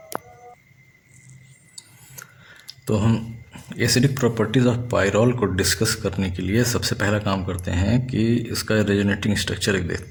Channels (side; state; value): both; identical; correlation 1.00